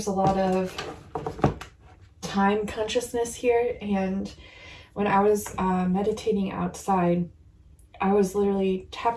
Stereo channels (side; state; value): both; identical; correlation 1.00